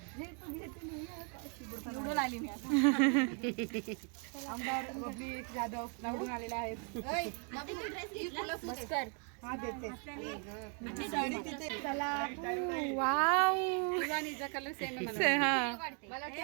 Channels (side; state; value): left; quieter; 40.0 dB